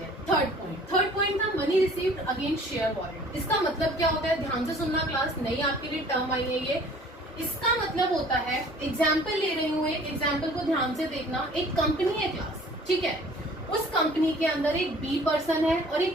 हैं। थर्ड पॉइंट था money received against share warrant. इसका मतलब क्या होता है, ध्यान से सुनना क्लास, नहीं आपके लिए टर्म आई है ये। इसका मतलब होता है, एग्जाम्पल ले रही हूँ, एक एग्जाम्पल को ध्यान से देखना। एक कंपनी है क्लास, ठीक है, उस कंपनी के अंदर एक बी पर्सन है और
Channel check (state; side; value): normal; both; correlation 0.51